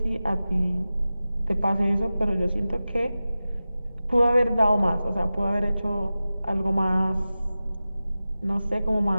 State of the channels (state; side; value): inverted; both; correlation -0.95